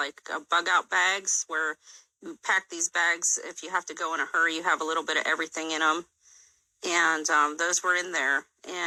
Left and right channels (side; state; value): both; identical; correlation 1.00